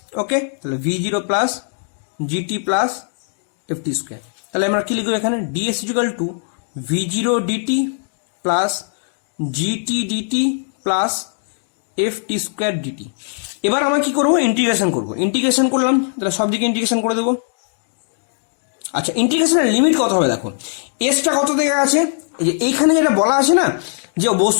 ওকে, তাহলে v0 plus gt plus ft square. তাহলে আমরা কি লিখবো এখানে? ds equal to v0 dt plus gt dt plus ft square dt। এবার আমরা কি করবো? ইন্টিগ্রেশন করবো। ইন্টিগ্রেশন করলাম, তাহলে সব দিকে ইন্টিগ্রেশন করে দেবো। আচ্ছা, ইন্টিগ্রেশনের লিমিট কত হবে? দেখো এসটা কত থেকে আছে? এই যে এইখানে যেটা বলা আছে না, যে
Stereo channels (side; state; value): right; silent; digital silence